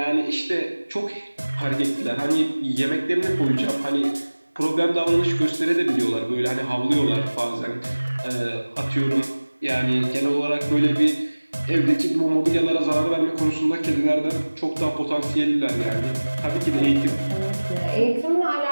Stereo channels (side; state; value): both; inverted; correlation -1.00